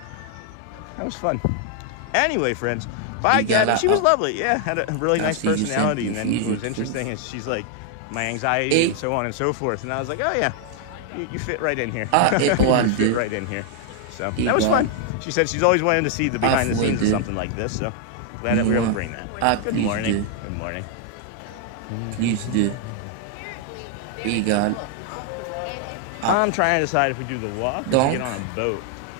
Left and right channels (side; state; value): both; different; correlation 0.00